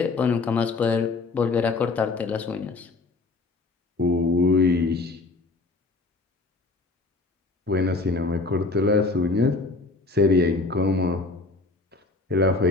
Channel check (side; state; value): right; quieter; 3.6 dB